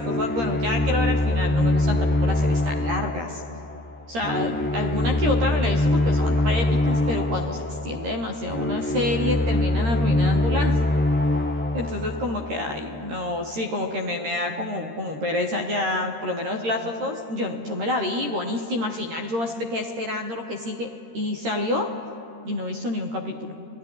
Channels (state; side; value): late; left; 13 ms